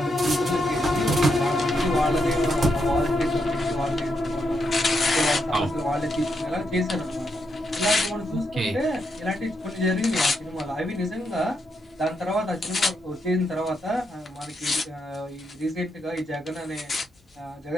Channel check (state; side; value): normal; both; correlation 0.81